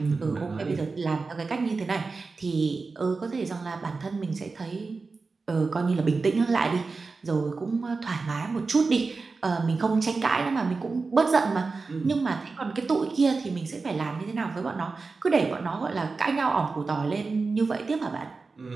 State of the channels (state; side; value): quieter; left; 4.1 dB